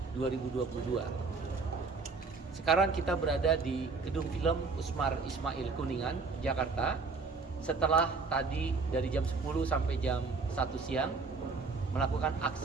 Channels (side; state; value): left; quieter; 4.3 dB